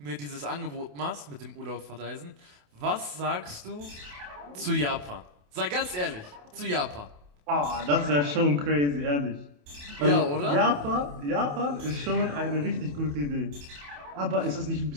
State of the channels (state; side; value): late; left; 28 ms